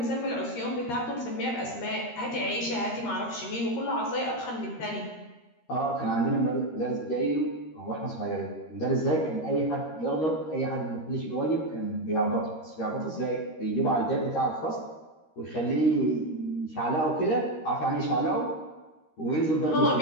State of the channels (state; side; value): late; right; 13 ms